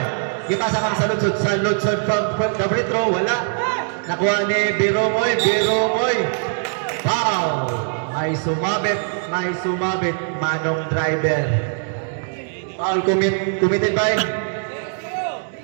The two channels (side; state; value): left; silent; 65 dB below the other